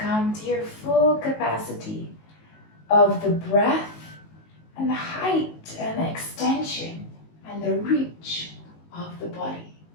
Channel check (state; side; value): late; right; 19 ms